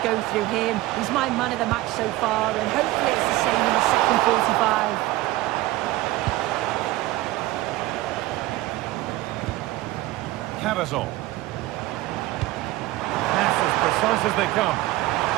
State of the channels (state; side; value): quieter; left; 17.5 dB